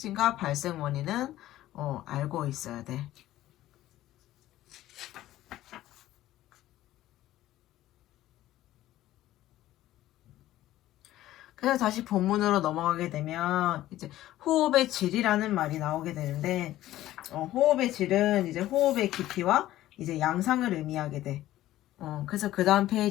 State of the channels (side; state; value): right; quieter; 14.6 dB